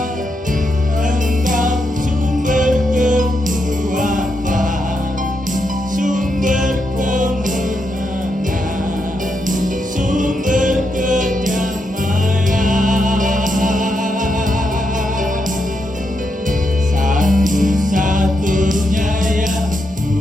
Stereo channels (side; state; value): both; normal; correlation 0.82